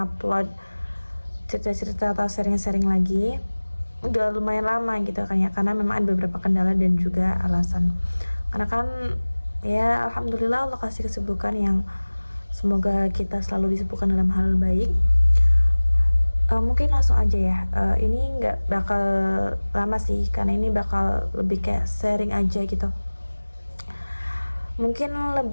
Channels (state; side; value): inverted; both; correlation -1.00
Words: cerita-cerita atau sharing-sharing lagi. Udah lumayan lama gitu kan ya, karena memang ada beberapa kendala dan juga alasan. Karena kan ya alhamdulillah Allah kasih kesibukan yang semoga kita selalu disibukkan dalam hal baik. Mungkin langsung aja ya. Ini nggak bakal lama sih, karena ini bakal lebih kayak sharing aja gitu. Mungkin